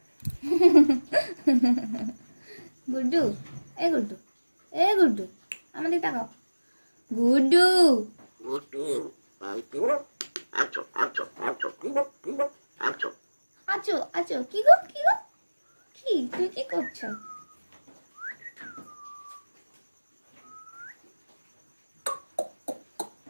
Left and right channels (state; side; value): inverted; both; correlation -1.00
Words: গুড্ডু, এ গুড্ডু, এ গুড্ডু, আমাদের তাকাও। গুড্ডু আছো আছো, কি গো কি গো, কি তুমি কি করছো?